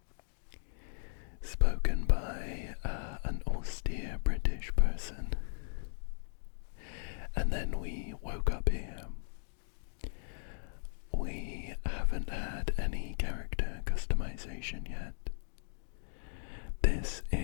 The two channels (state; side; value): silent; right; digital silence